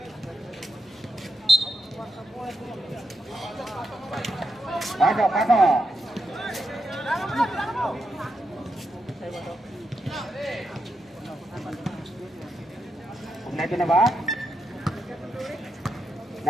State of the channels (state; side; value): normal; both; correlation 0.84